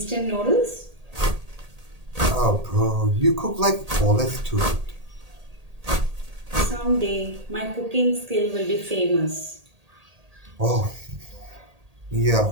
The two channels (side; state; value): left; late; 1.8 ms